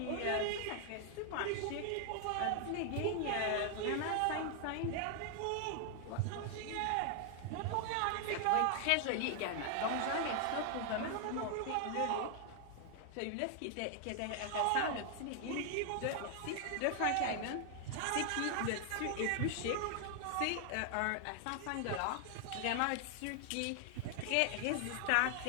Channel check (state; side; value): different; both; correlation 0.00